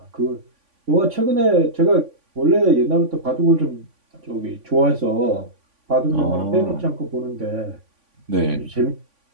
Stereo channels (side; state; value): left; late; 3.5 ms